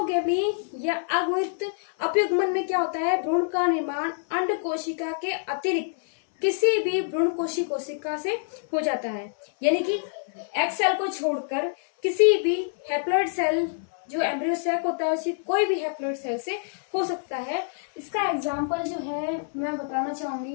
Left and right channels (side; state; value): right; silent; 61 dB below the other